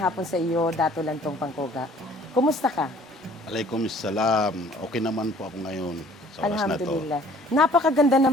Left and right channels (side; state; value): both; normal; correlation 0.54